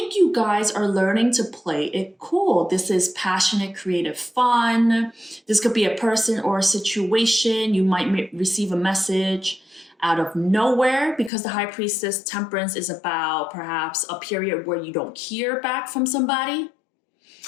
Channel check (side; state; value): right; drops out; at 11.3 s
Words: you guys are learning to play it cool. This is passionate, creative fun. This could be a person or a situation. You might receive a message out of nowhere because the High Priestess Temperance is about perhaps a period where you don't hear back from somebody.